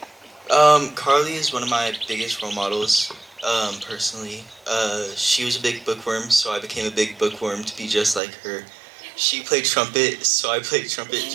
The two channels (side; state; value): left; drops out; at 8.2 s